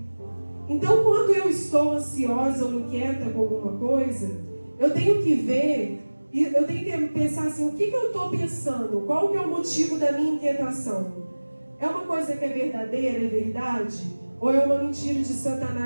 Então, quando eu estou ansiosa ou inquieta com alguma coisa, eu tenho que ver E eu tenho que pensar assim, o que eu estou pensando? Qual que é o motivo da minha inquietação? É uma coisa que é verdadeira, é verdade? Ou é uma mentira de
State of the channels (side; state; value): both; inverted; correlation -1.00